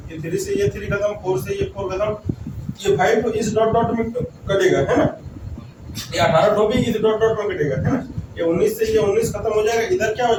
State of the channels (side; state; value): both; identical; correlation 1.00